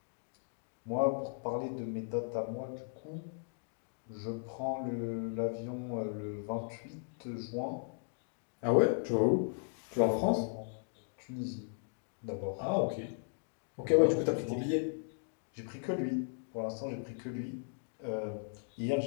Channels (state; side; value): silent; right; digital silence